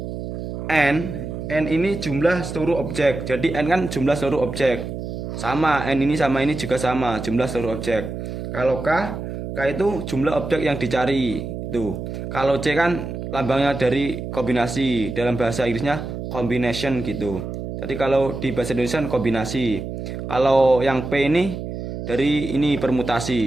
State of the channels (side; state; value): right; noise; hum, 7 dB below the sound